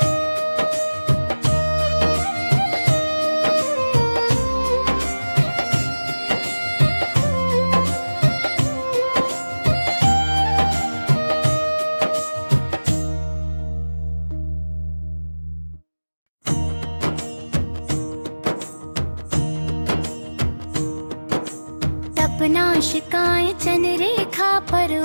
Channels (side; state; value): both; inverted; correlation -1.00